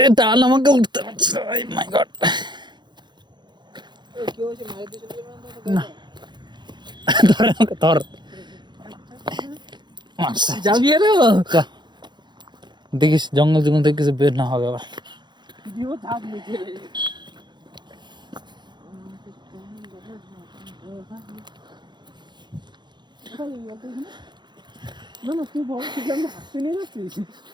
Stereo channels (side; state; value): left; late; 0.21 ms